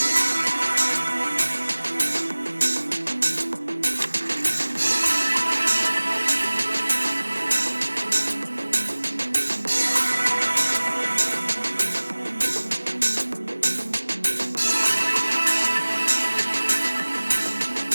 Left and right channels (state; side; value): inverted; both; correlation -1.00